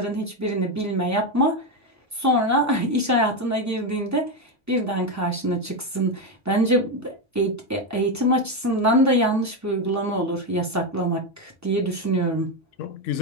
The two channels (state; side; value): normal; both; correlation 0.10